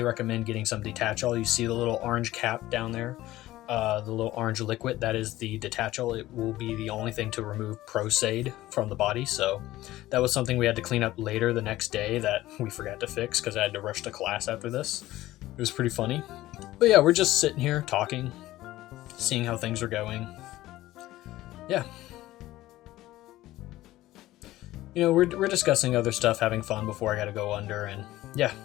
recommend getting some detachable. You see the little orange cap down there, the little orange liquid, that is the detachable. It will be the only thing to remove Prosaid from the body. So that was something we had to clean up later the next day that we forgot to fix because I had to rush to class after this. It was pretty funny. But yeah, we're just sitting here talking, seeing how things are going. Yeah. You know, we're discussing other stuff, having fun before I gotta go under, and yeah,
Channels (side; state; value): right; quieter; 16.1 dB